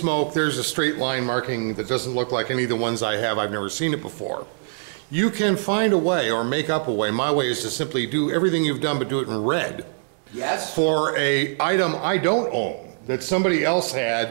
there's a straight line marking that doesn't look like any of the ones I have. I've never seen it before. You can find a way or make up a way. My way is to simply do everything you've done but do it in red. Yes. For a item I don't own that somebody else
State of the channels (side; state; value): left; silent; digital silence